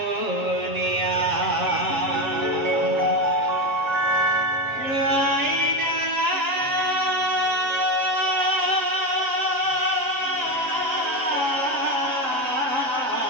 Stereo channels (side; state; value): left; late; 7.5 ms